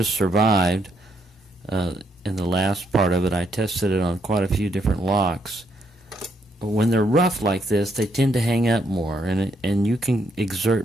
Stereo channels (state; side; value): normal; both; correlation 0.75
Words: survived, in the last part of it, I tested it on quite a few different locks. When they're rough like this, they tend to hang up more, and you can exert